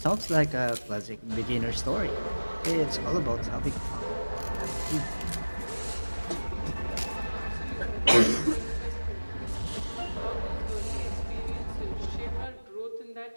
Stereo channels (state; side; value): inverted; both; correlation -1.00